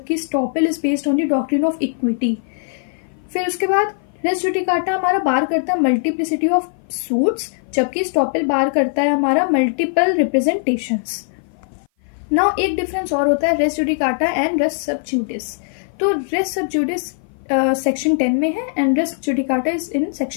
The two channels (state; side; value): silent; right; 56 dB below the other